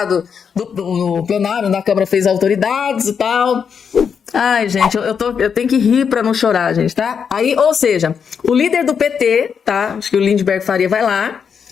do plenário da Câmara fez a autoridades e tal. Ai, gente, eu tenho que rir pra não chorar, gente, tá? Aí, ou seja, o líder do PT, tá? Acho que o Lindbergh Faria vai lá,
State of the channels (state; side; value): quieter; right; 6.8 dB